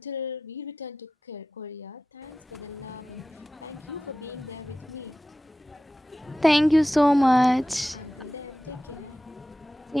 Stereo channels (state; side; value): normal; both; correlation 0.94